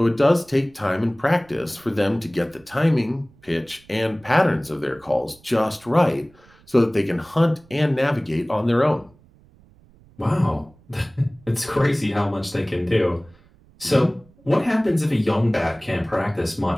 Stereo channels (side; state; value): right; noise; rumble, 28 dB below the sound